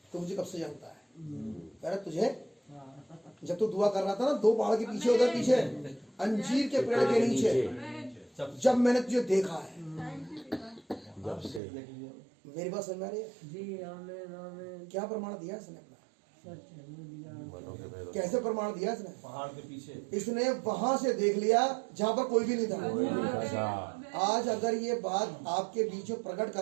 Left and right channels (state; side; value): drops out; left; at 11.6 s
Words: तू मुझे कब से जानता है? कह रहा तुझे जब तू दुआ कर रहा था ना, 2 पहाड़ के पीछे, उधर पीछे अंजीर के पेड़ के नीचे, जब मैंने तुझे देखा है, जब से मेरी बात समझ में आ रही है? जी आमीन आमीन। क्या प्रमाण दिया इसने अपना? सच है, वो दिया। मनों के पैरों कैसे प्रमाण दिया इसने? पहाड़ के पीछे इसने वहां से देख लिया जहां पर कोई भी नहीं था। कोई नहीं था। आज अगर ये बात आपके बीच में प्रकट